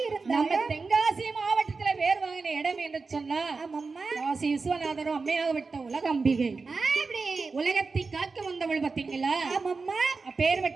நம்ம தென்காசி மாவட்டத்துல பேர் வாங்கின இடம் என்று சொன்னா காசி விஸ்வநாதரும் அம்மையாகப்பட்ட உலகம்பிகை உலகத்தை காக்க வந்தவள் பாத்தீங்களா.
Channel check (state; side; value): quieter; left; 4.3 dB